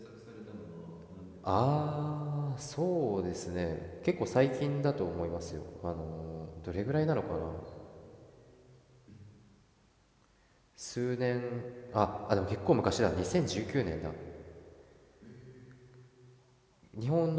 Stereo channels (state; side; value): identical; both; correlation 1.00